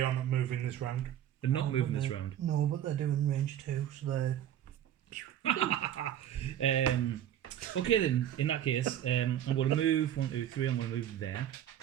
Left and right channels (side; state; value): left; quieter; 10.9 dB